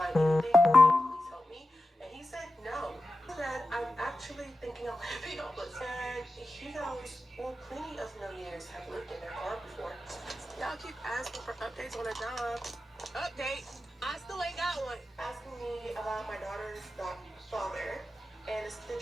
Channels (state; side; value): normal; both; correlation 0.92